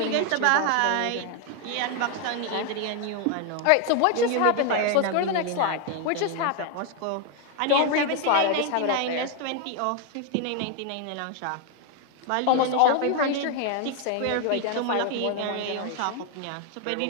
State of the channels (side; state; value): both; different; correlation 0.01